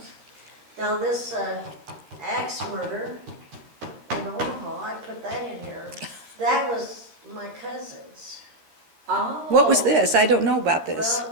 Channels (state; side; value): late; left; 13 ms